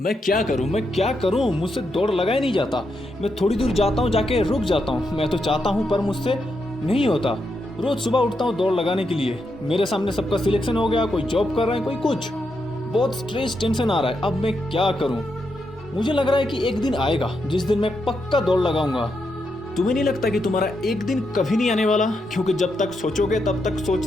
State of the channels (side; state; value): both; normal; correlation 0.83